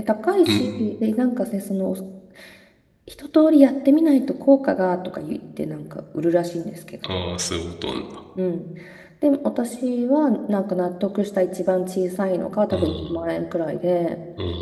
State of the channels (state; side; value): identical; both; correlation 1.00